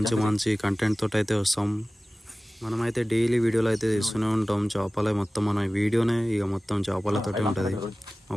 మంచి కంటెంట్ తోటి అయితే వస్తాం. మనమైతే డైలీ వీడియోలు అయితే తీస్తూనే ఉంటాం. చేపలే మొత్తం మన వీడియోనే ఇక మొత్తం చేపలతోటే ఉంటుంది. మా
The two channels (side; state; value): both; normal; correlation 0.97